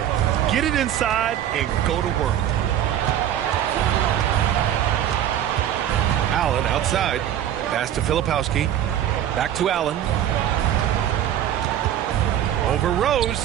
Get it inside and go to work. Allen outside. Pass to Filipowski. Back to Allen. Over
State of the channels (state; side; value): quieter; left; 10.9 dB